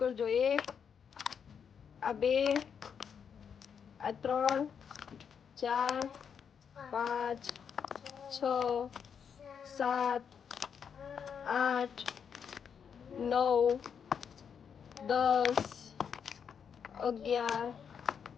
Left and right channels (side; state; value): right; quieter; 7.2 dB